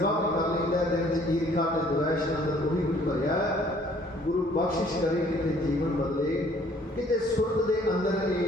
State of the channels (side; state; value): both; normal; correlation 0.58